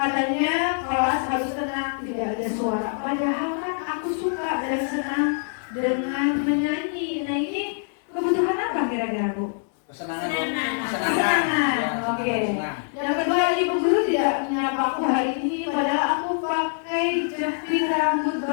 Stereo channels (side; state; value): right; silent; 62 dB below the other